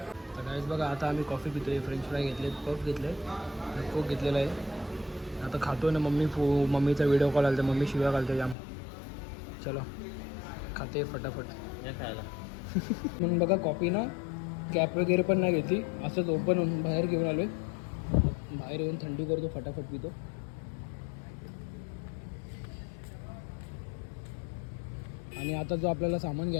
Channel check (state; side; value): drops out; right; at 8.6 s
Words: तर गाईज बघा, आता आम्ही कॉफी पितो आहे, फ्रेंच फ्राय घेतले, पफ घेतले, कोक घेतलेला आहे. आता खातो ना. मम्मीचा व्हिडिओ कॉल आला तर मम्मी शिव्या घालते जाम. चलो खाते फटाफट या खायला. म्हणून बघा कॉफी ना कॅप वगैरे पण नाही घेतली, असंच ओपन होऊन बाहेर घेऊन आलो आहे. बाहेर येऊन थंडी करतो, फटाफट पितो. आणि आता जो आपल्याला सामान